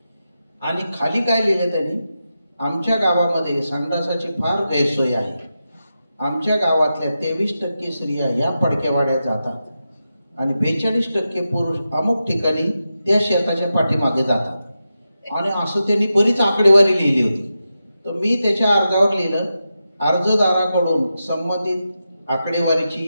आणि खाली काय लिहिलं त्यांनी, आमच्या गावामध्ये संडासाची फार गैरसोय आहे. आमच्या गावातल्या 23% स्त्रिया या पडक्यावाड्यात जातात आणि 42% पुरुष अमुक ठिकाणी त्या शेताच्या पाठीमागे जातात. आणि असं त्यांनी बरीच आकडेवारी लिहिली होती. तर मी त्याच्या अर्जावर लिहिलं, अर्जदाराकडून संबंधित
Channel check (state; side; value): inverted; both; correlation -0.90